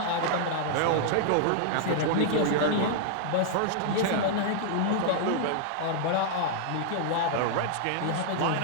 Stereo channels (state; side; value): different; both; correlation -0.01